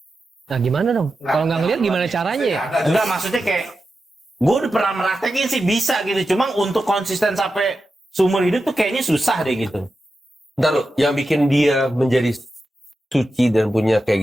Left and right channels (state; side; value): normal; both; correlation 0.91